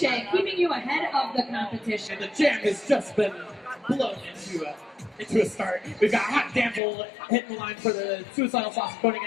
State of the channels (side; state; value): right; drops out; at 6.8 s